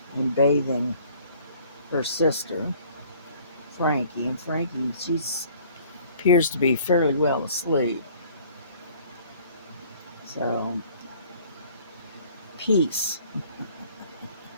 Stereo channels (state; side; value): inverted; both; correlation -0.54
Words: bathing her sister, Frankie. And Frankie, she appears to be fairly well asleep. So, peace.